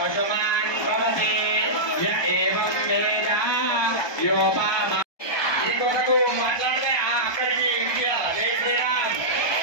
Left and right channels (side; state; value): right; late; 1.2 ms